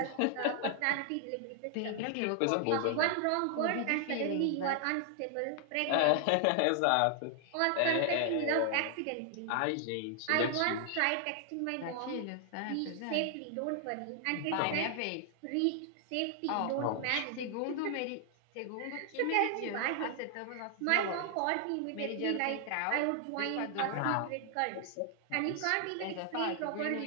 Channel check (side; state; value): both; different; correlation 0.00